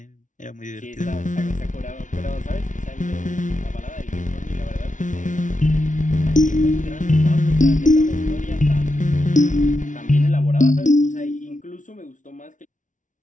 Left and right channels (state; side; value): late; right; 0.37 ms